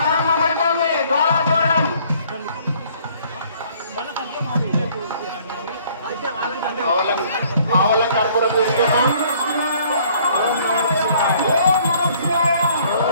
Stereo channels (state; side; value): inverted; both; correlation -0.59